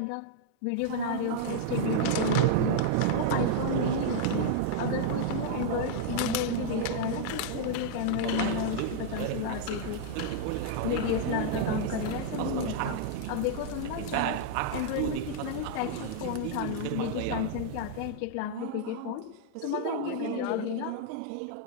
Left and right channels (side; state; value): both; different; correlation -0.01